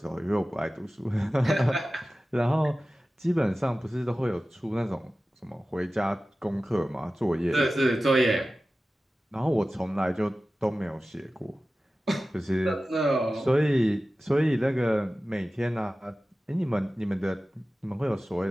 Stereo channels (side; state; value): both; normal; correlation 0.95